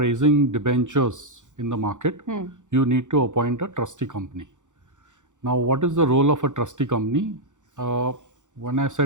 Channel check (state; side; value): late; left; 0.86 ms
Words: debentures in the market, you need to appoint a trustee company. Now, what is the role of a trustee company? When I